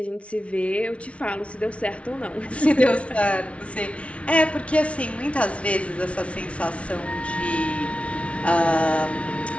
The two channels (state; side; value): late; right; 0.062 ms